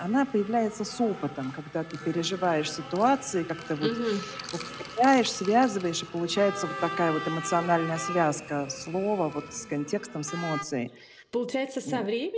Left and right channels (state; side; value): identical; both; correlation 1.00